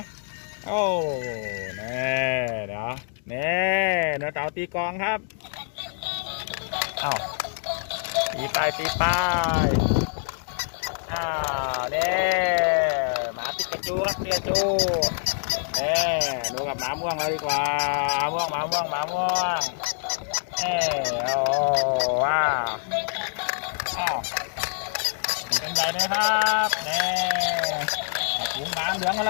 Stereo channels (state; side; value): silent; right; digital silence